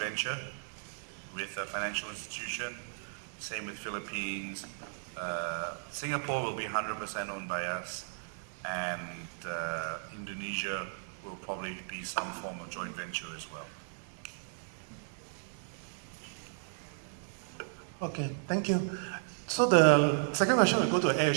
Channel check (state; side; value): silent; left; digital silence